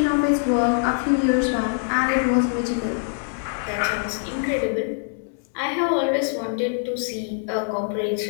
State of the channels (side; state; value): right; silent; digital silence